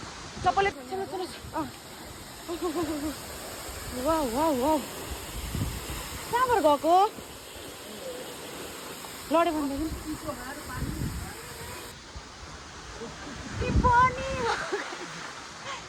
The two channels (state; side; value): identical; both; correlation 1.00